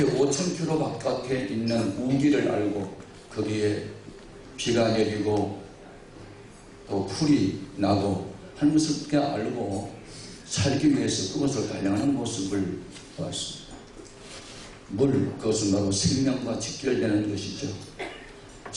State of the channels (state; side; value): identical; both; correlation 1.00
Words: 5,000km 바깥에 있는 우기를 알고 거기에 비가 내리고 또 풀이 나고 하는 것을 어떻게 알고 살기 위해서 그것을 달려가는 모습을 보았습니다. 물, 그것은 바로 생명과 직결되는 것이죠.